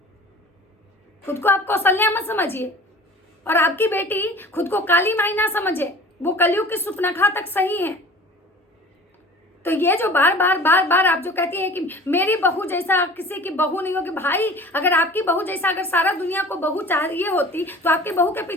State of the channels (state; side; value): normal; both; correlation 0.43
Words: खुद को आप कौशल्या मत समझिए, और आपकी बेटी खुद को काली माई ना समझे, वो कलयुग की सुपनखा तक सही है। तो ये जो बार बार आप जो कहती हैं कि मेरी बहू जैसा किसी की बहू नहीं होगी, भाई अगर आपकी बहू जैसा अगर सारा दुनिया को बहू चाहिए होती तो आपकी बहू के